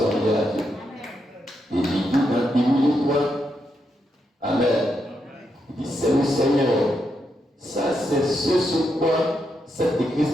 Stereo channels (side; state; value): both; normal; correlation 0.82